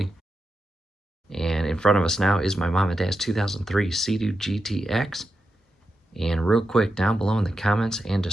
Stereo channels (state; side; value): normal; both; correlation 0.88